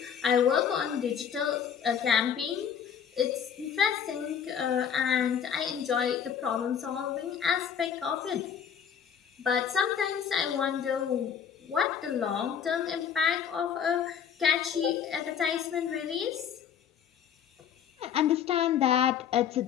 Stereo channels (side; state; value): right; quieter; 8.0 dB